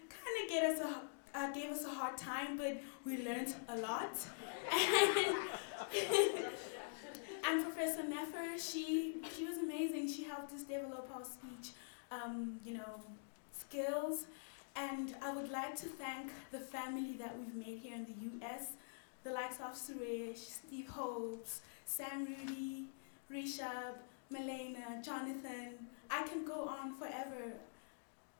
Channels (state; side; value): silent; right; digital silence